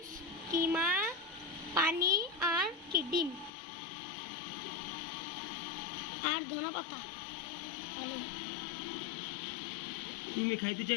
কিমা, পানি আর কি ডিম আর ধনেপাতা। ভালো। তুমি খাইতে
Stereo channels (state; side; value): drops out; right; at 3.5 s